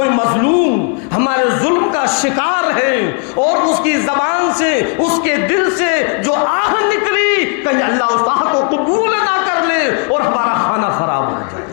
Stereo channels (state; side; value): quieter; right; 37.7 dB